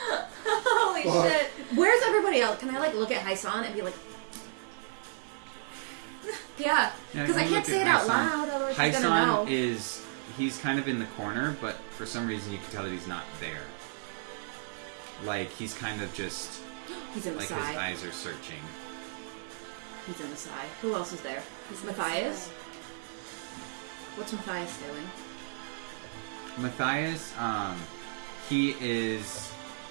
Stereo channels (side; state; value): left; silent; digital silence